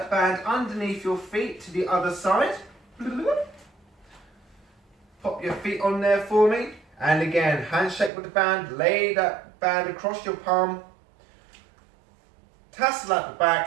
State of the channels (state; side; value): drops out; left; at 8.1 s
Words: band underneath your feet to the other side. Pop your feet on there for me. And again, handshake with the band, lay that band across your palm. Tassel at the